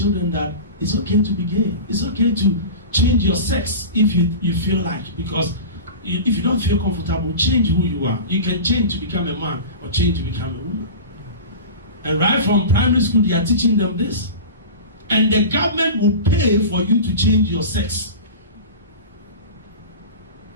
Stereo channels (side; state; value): both; inverted; correlation -0.32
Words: that it's okay to be gay. It's okay to change your sex if you feel like. Because if you don't feel comfortable, change who you are. You can change to become a man or change to become a woman. And right from primary school, they are teaching them this. And the government will pay for you to change your sex